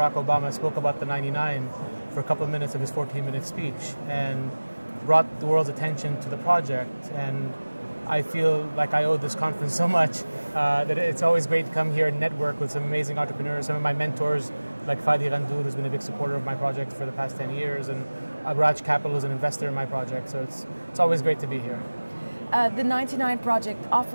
Obama spoke about the 99 for a couple of minutes of his 14-minute speech and brought the world's attention to the project. And I feel like I owe this conference so much that it's always great to come here and network with some amazing entrepreneurs. Some of my mentors, like Fadi Ghandour, who's been a big supporter of my project for the past 10 years, and Agraj Capital is an investor in my project. So it's always great to be here. The 99 project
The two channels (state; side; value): inverted; both; correlation -1.00